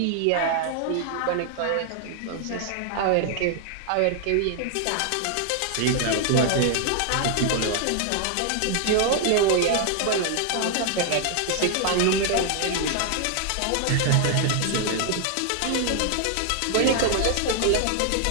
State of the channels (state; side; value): different; both; correlation 0.00